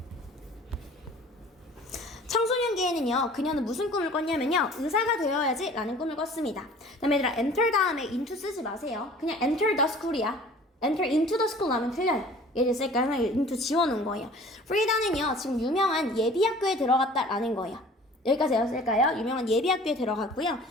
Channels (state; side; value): normal; both; correlation 0.47